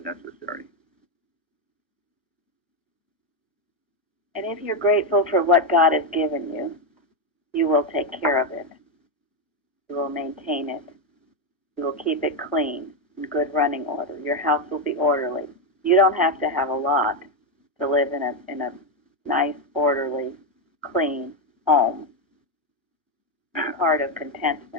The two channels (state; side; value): normal; both; correlation 0.06